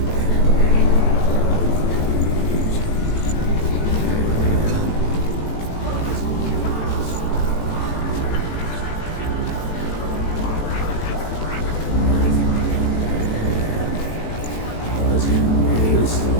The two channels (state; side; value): late; right; 18 ms